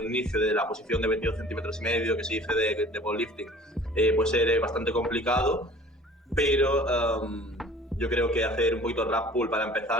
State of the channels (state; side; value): normal; both; correlation 0.47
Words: inicio, de la posición de 22 centímetros y medio que se dice de powerlifting, puede ser bastante complicado, pero yo creo que hacer un poquito de rack pull para